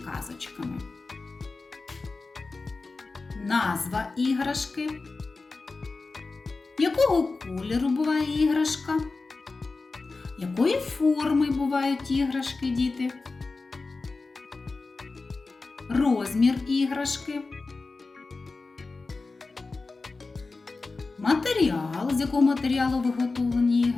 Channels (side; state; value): right; quieter; 3.8 dB